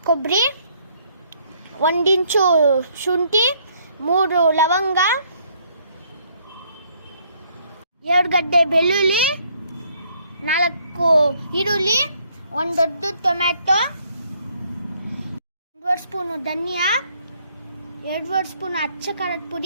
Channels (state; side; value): inverted; both; correlation -0.66